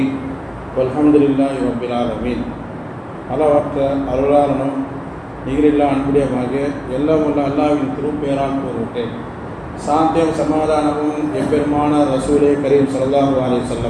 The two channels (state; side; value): identical; both; correlation 1.00